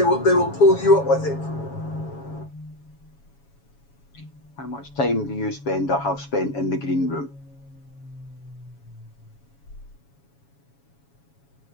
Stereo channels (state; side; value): late; right; 7.2 ms